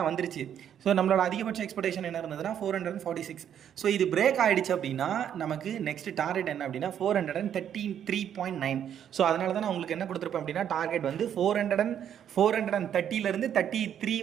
வந்துருச்சு. ஸோ நம்மளோட அதிகபட்ச எக்ஸ்பெக்டேஷன் என்ன இருந்ததுன்னா 446. ஸோ இது பிரேக் ஆகிடுச்சு அப்படின்னா நமக்கு நெக்ஸ்ட் டார்கெட் என்ன அப்படின்னா 433.9. ஸோ அதனால தான் நான் உங்களுக்கு என்ன கொடுத்துருப்பேன் அப்படின்னா, டார்கெட் வந்து 430லேருந்து 33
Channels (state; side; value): quieter; left; 9.4 dB